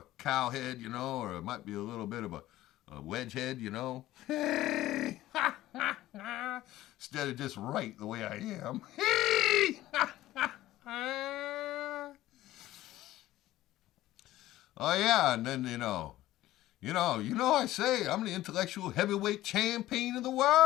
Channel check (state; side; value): quieter; right; 15.3 dB